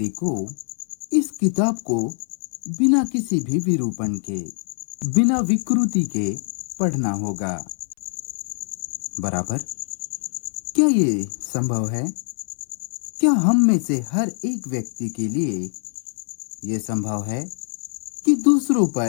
को इस किताब को बिना किसी भी विरूपण के, बिना विकृति के पढ़ना होगा। बराबर। क्या ये संभव है? क्या हम में से हर एक व्यक्ति के लिए यह संभव है कि दूसरों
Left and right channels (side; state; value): right; silent; 63 dB below the other